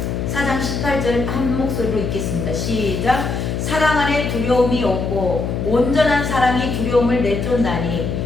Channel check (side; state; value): left; noise; hum, 2 dB below the sound